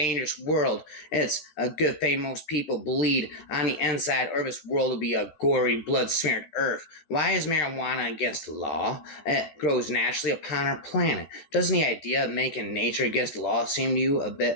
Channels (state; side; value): late; right; 14 ms